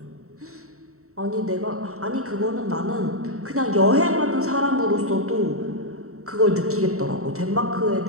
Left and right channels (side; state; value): left; late; 0.64 ms